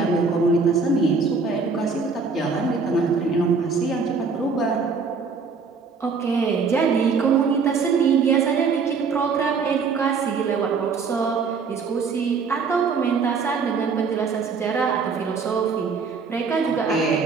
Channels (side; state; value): left; quieter; 5.0 dB